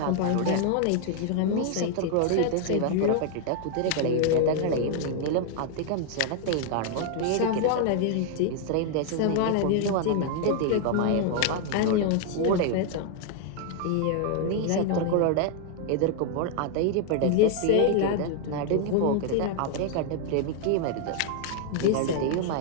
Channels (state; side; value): different; both; correlation 0.00